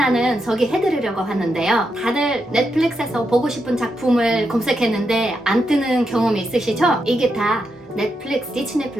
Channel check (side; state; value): both; normal; correlation 0.84